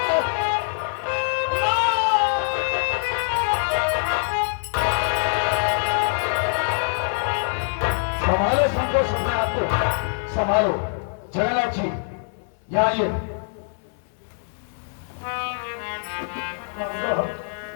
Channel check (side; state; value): right; silent; digital silence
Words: संभालो संतोष, अपने आप को संभालो। जगन्नाथ जी यहाँ आइए।